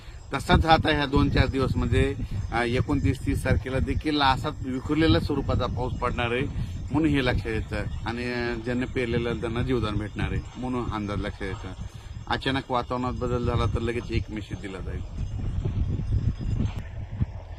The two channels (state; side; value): identical; both; correlation 1.00